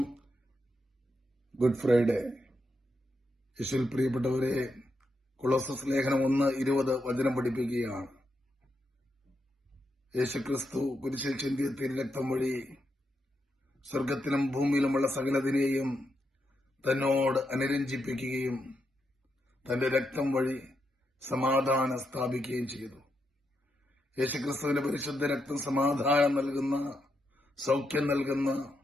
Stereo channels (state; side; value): normal; both; correlation 0.83